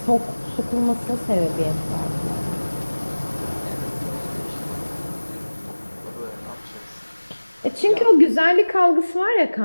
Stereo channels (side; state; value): both; inverted; correlation -1.00